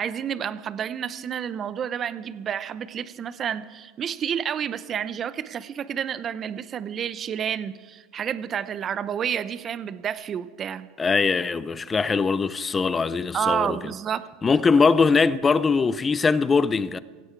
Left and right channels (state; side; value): normal; both; correlation 0.80